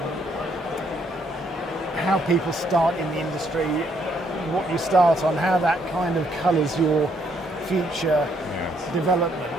how people start in the industry, what you start on, how that kind of colours your future development.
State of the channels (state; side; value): normal; both; correlation 0.71